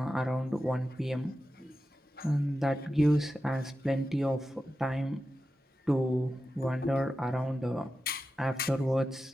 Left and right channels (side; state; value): both; normal; correlation 0.92